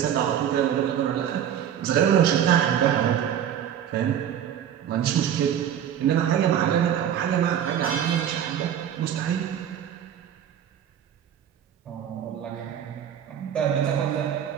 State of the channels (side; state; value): left; quieter; 9.6 dB